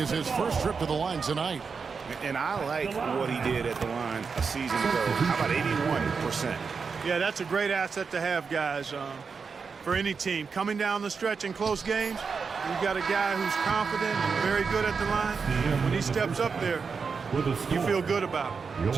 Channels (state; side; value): quieter; left; 5.4 dB